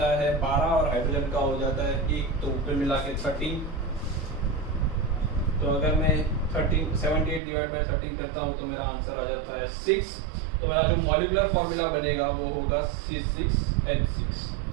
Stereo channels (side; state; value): left; drops out; at 7.4 s